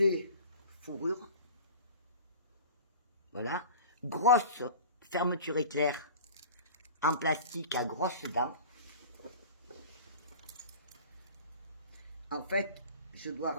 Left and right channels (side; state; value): both; inverted; correlation -0.39